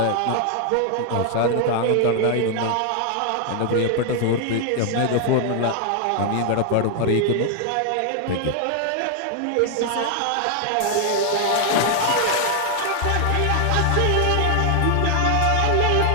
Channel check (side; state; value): both; different; correlation 0.00